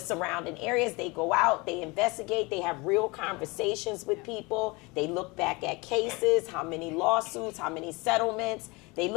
areas. They go out, they investigate, they have real conversations with people. They look back at cases, how many lawsuits, how many settlements. They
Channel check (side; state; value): right; quieter; 25.7 dB